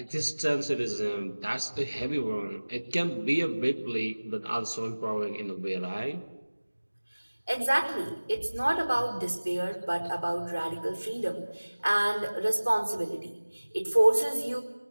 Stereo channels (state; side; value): inverted; both; correlation -1.00